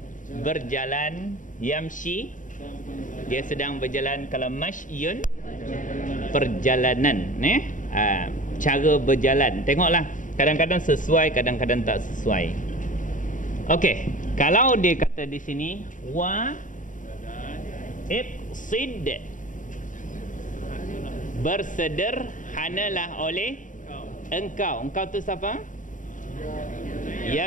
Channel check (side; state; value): right; late; 0.38 ms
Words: berjalan, yamshi dia sedang berjalan. Kalau mashyun perjalanan, cara berjalan. Tengoklah, kadang-kadang sesuai, kadang-kadang tak sesuai. Okey, kalau dia kata di sini wa iqsid, bersederhanalah oleh engkau. Engkau tu siapa?